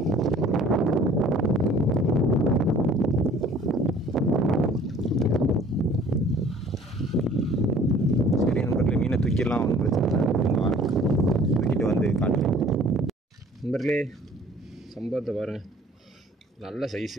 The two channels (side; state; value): both; normal; correlation 0.52